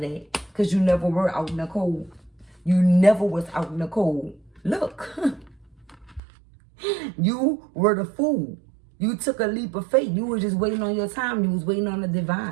that. Because you never were out in the cold. You never was out in the cold. Look. You were the fool. You took a leap of faith. You were just waiting on your time. You was waiting on the divine.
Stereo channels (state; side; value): drops out; left; at 6.2 s